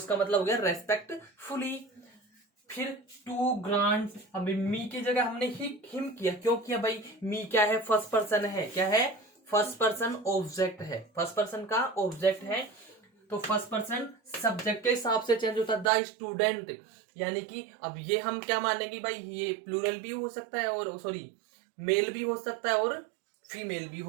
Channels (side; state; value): left; drops out; at 15.9 s